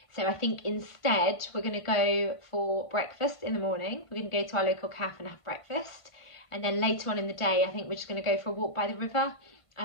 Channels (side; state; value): right; late; 1.5 ms